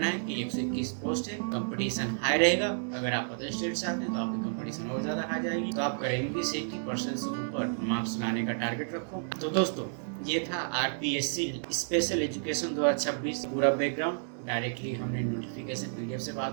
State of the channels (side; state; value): left; silent; digital silence